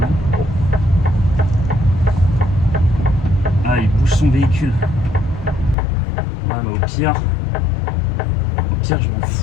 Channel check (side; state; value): right; drops out; at 5.8 s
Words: Non. Ah, il bouge son véhicule. Ah, mais au pire, je m'en